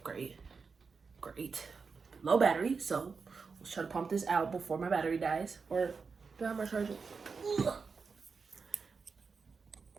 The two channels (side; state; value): left; quieter; 5.0 dB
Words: Great, low battery, so let's try to pump this out before my battery dies. Or do I have my charger?